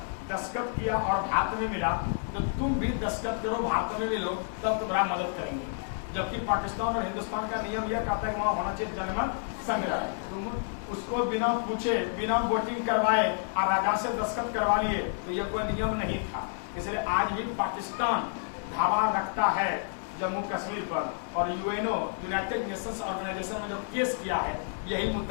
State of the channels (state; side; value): silent; right; digital silence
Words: दस्तखत किया और भारत में मिला, तो तुम भी दस्तखत करो, भारत में मिलो, तब तुम्हारा मदद करेंगे। जबकि पाकिस्तान और हिंदुस्तान का नियम यह कहता है कि वहां होना चाहिए जनमत संग्रह। तुम उसको बिना पूछे, बिना वोटिंग करवाए और राजा से दस्तखत करवा लिए, तो यह कोई नियम नहीं था। इसलिए आज भी पाकिस्तान धावा रखता है जम्मू कश्मीर पर, और यूएनओ यूनाइटेड नेशंस ऑर्गेनाइजेशन में जो केस किया है, यही